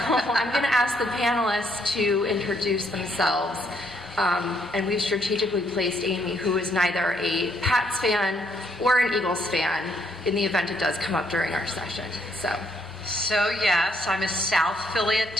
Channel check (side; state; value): both; normal; correlation 0.70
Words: going to ask the panelists to introduce themselves. And we've strategically placed Amy, who is neither a Pats fan or an Eagles fan, in the event it does come up during our session. So yes, I'm a South Philly